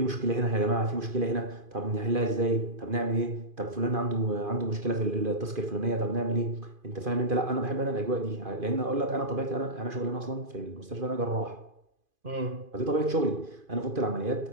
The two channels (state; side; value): late; left; 2.5 ms